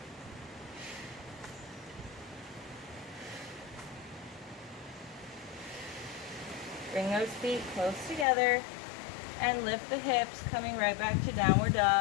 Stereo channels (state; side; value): drops out; right; at 8.2 s